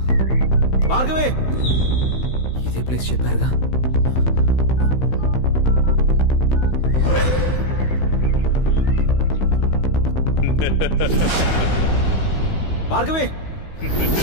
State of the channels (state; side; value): late; right; 15 ms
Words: భార్గవి. ఇదే ప్లేస్ చెప్పారుగా. భార్గవి,